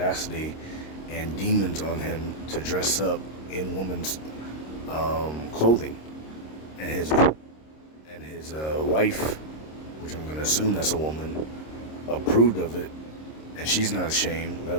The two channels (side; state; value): right; late; 26 ms